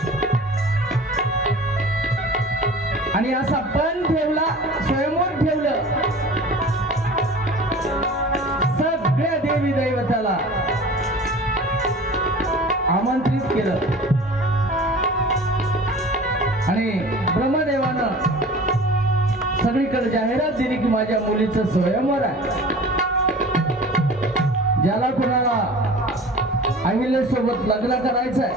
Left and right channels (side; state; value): both; normal; correlation 0.41